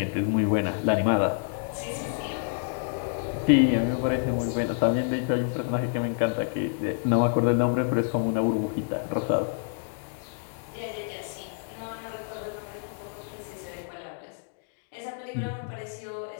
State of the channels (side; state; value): right; silent; digital silence